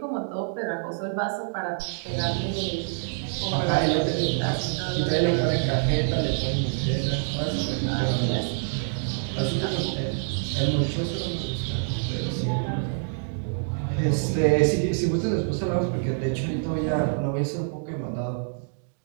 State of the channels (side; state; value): left; silent; digital silence